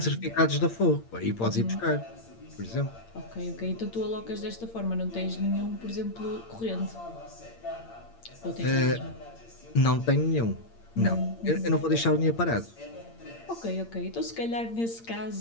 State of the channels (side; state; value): right; late; 8.8 ms